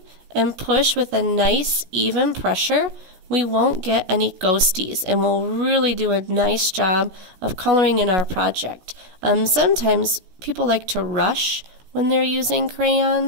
and push with a nice even pressure, we won't get any ghosties, and we'll really do a nice job of coloring in our project. Sometimes people like to rush when they're using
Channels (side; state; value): left; late; 16 ms